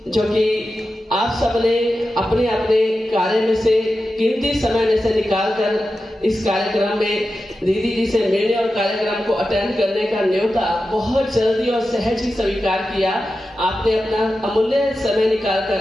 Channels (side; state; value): both; normal; correlation 0.92